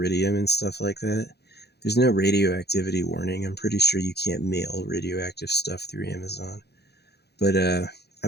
and stuff like that? There's no radioactivity warning. I'm pretty sure you can't mail radioactive stuff through Amazon. But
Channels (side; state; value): right; late; 0.48 ms